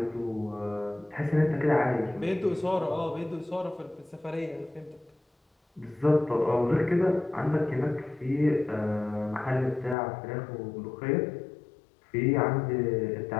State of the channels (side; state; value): right; drops out; at 10.0 s